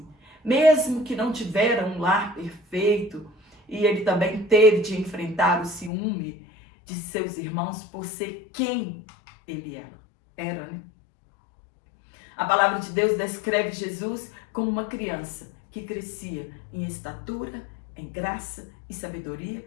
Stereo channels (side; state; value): right; drops out; at 5.9 s